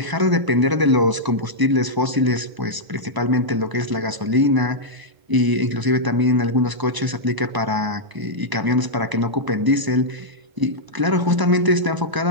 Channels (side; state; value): left; late; 1.0 ms